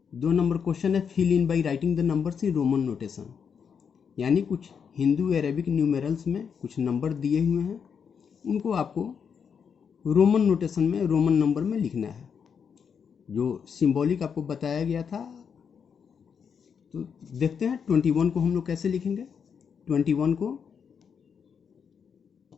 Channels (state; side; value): quieter; right; 6.8 dB